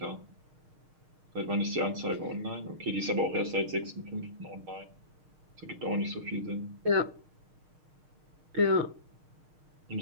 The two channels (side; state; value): left; late; 6.5 ms